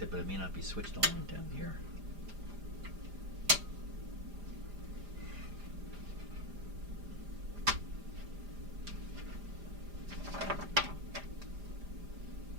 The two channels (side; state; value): left; late; 5.0 ms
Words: but it may not be switched on down here.